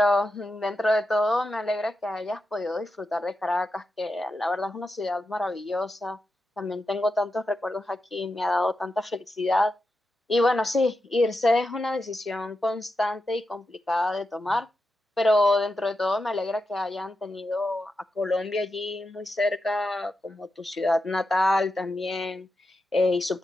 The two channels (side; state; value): both; normal; correlation 0.88